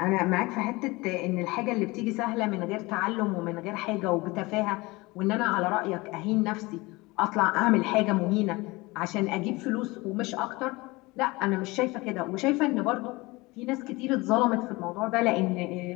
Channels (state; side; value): quieter; right; 22.8 dB